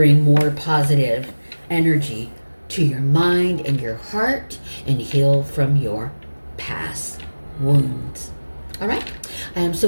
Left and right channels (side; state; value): both; inverted; correlation -1.00